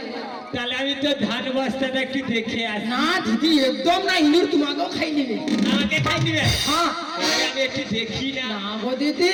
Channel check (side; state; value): both; identical; correlation 1.00